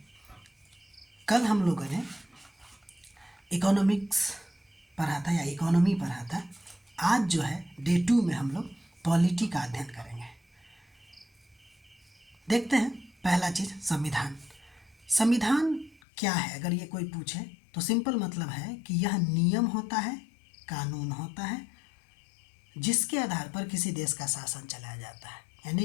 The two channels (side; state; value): right; drops out; at 16.0 s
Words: कल हम लोगों ने इकोनॉमिक्स पढ़ा था या इकोनॉमी पढ़ा था। आज जो है डे 2 में हम लोग पॉलिटी का अध्ययन करेंगे। देखते हैं पहला चीज़ संविधान। संविधान क्या है अगर ये कोई पूछे तो सिंपल मतलब है कि यह नियम होता है, कानून होता है जिसके आधार पर किसी देश का शासन चलाया जाता है।